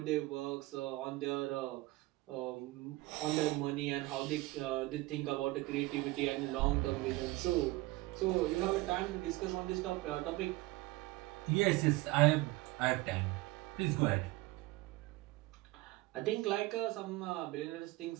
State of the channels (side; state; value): left; quieter; 20.4 dB